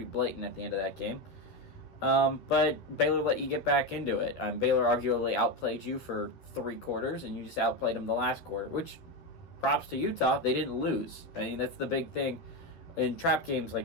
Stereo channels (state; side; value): late; right; 12 ms